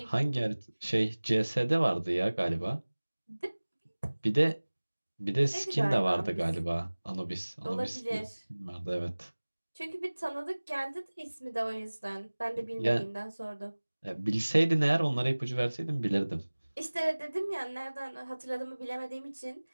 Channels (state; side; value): inverted; both; correlation -1.00